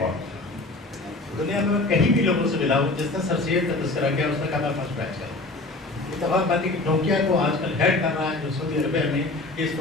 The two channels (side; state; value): right; quieter; 3.0 dB